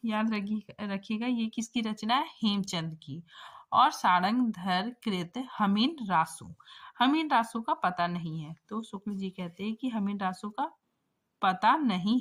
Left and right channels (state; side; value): identical; both; correlation 1.00